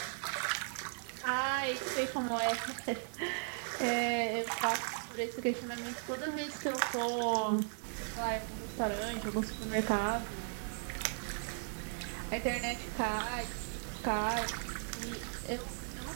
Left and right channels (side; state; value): left; silent; 53 dB below the other